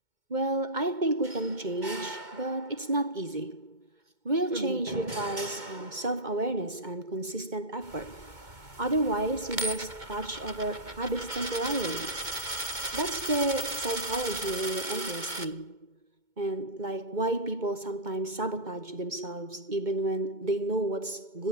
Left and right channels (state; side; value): late; left; 2.2 ms